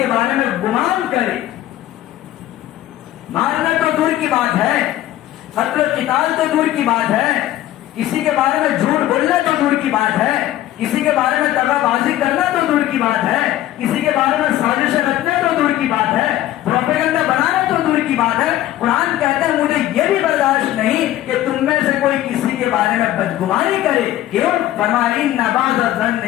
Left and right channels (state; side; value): quieter; right; 13.9 dB